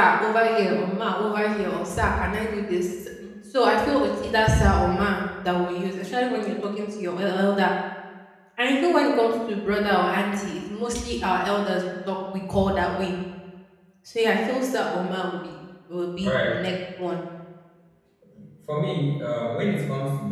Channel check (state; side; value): identical; both; correlation 1.00